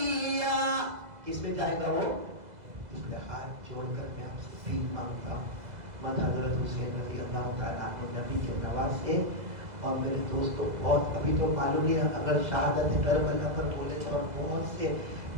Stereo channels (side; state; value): left; late; 2.0 ms